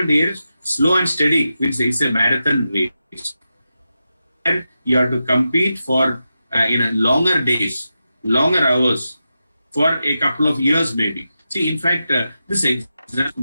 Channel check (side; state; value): both; inverted; correlation -0.90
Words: here is slow and steady, which is a marathon race. And you have to compete for longer days, longer hours, for a couple of years maybe. See, in fact, this